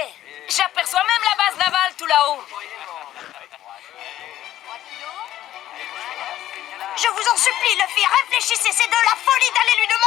J'aperçois même la base navale tout là-haut. Je vous en supplie, Luffy, réfléchissez, c'est de la folie d'aller lui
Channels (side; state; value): right; quieter; 13.0 dB